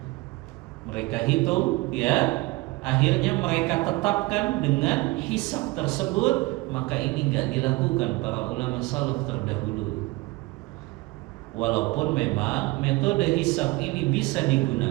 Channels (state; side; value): quieter; left; 21.9 dB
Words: Mereka hitung, ya, akhirnya mereka tetapkan dengan hisab tersebut. Maka ini nggak dilakukan para ulama salaf terdahulu. Walaupun memang metode hisab ini bisa